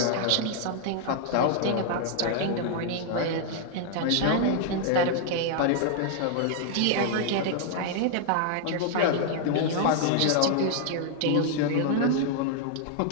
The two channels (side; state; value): both; different; correlation 0.00